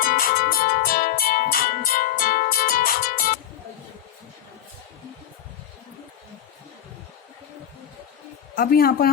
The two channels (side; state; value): right; quieter; 10.6 dB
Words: अब यहाँ पर